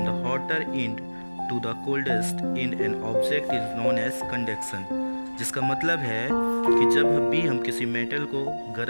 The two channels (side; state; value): both; inverted; correlation -1.00